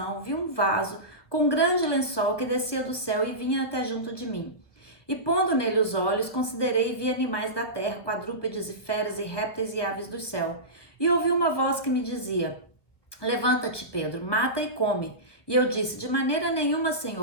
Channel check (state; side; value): late; right; 1.4 ms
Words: vi um vaso com um grande lençol que descia do céu e vinha até junto de mim. E pondo nele os olhos, considerei e vi animais da terra, quadrúpedes e feras e répteis e aves do céu. E ouvi uma voz que me dizia: levanta-te, Pedro, mata e come. E eu disse: de maneira nenhuma,